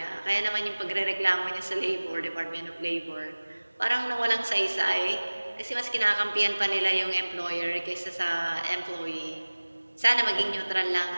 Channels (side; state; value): both; inverted; correlation -1.00